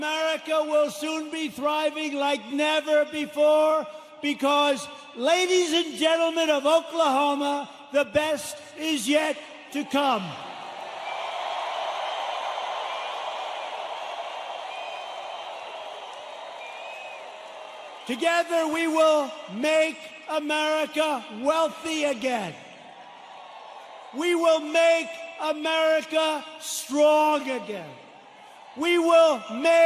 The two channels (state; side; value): identical; both; correlation 1.00